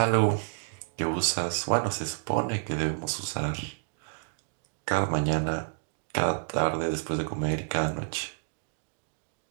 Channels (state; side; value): silent; left; digital silence